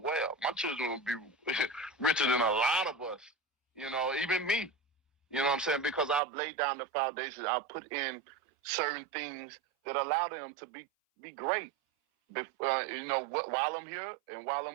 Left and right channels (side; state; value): left; drops out; at 6.2 s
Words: My children will be richer than a lot of us, even me. You know what I'm saying? Because I've laid down the foundation. I've put in certain things that allow them to be great, while I'm here and while